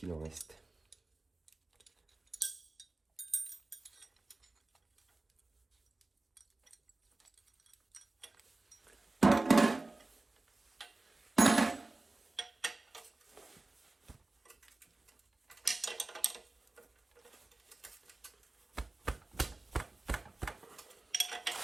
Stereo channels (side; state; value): left; quieter; 3.1 dB